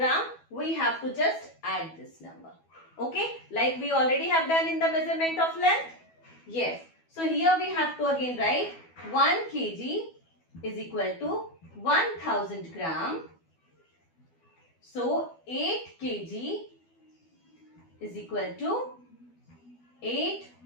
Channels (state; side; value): late; right; 12 ms